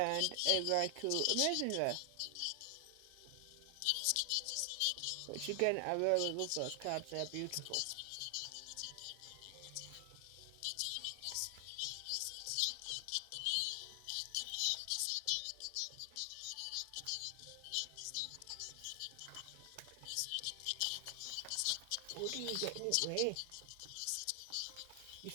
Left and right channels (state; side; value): different; both; correlation 0.00